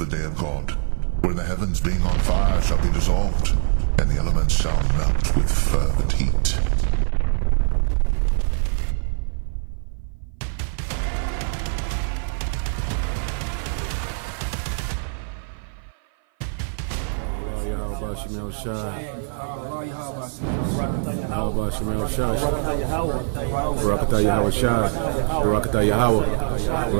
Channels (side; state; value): left; silent; 58 dB below the other